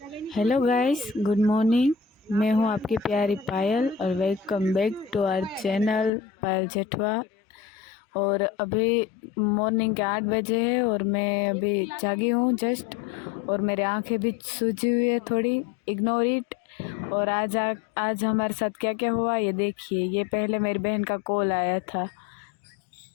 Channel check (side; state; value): right; drops out; at 6.1 s